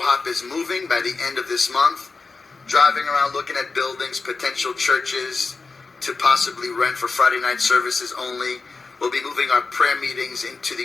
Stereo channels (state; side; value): quieter; right; 4.2 dB